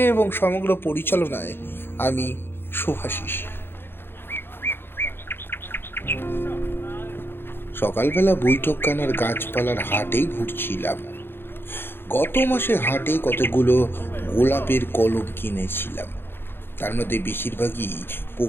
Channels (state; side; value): late; right; 0.10 ms